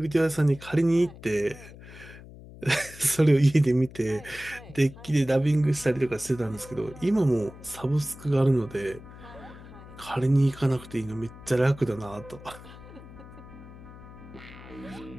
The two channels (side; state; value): left; noise; hum, 17 dB below the sound